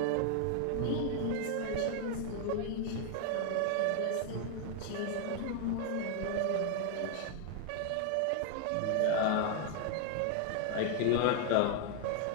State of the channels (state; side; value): different; both; correlation 0.00